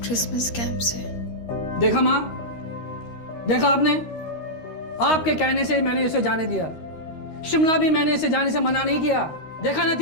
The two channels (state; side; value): late; right; 13 ms